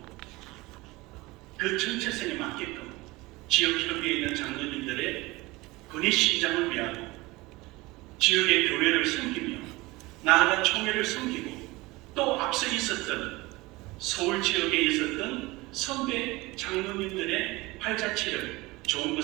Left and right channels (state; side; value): quieter; left; 21.6 dB